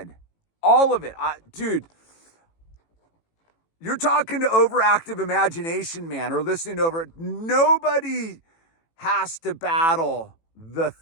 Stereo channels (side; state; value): right; late; 18 ms